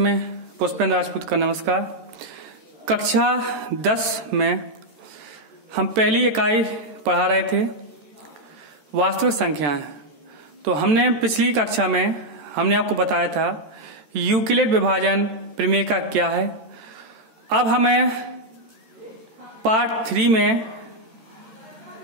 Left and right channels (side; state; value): left; late; 14 ms